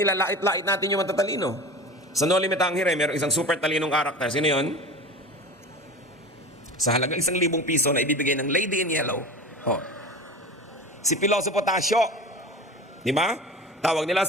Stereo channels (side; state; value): both; normal; correlation 0.33